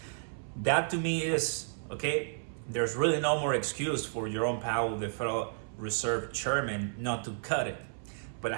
That to me is, okay, there's really no more excuse for Jerome Powell, the Federal Reserve Chairman, not to cut it. But I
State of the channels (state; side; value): silent; left; 56 dB below the other